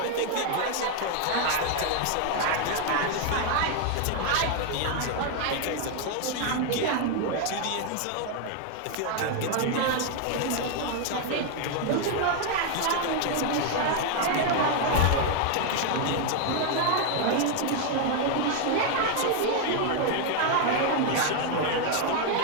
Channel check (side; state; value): both; different; correlation 0.01